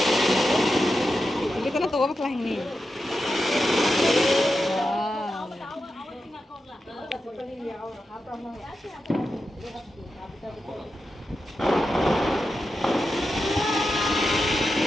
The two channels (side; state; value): both; normal; correlation 0.89